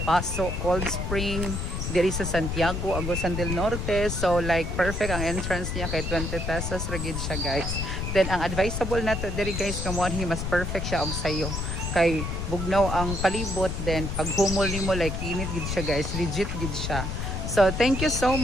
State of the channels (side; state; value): left; noise; rumble, 3 dB below the sound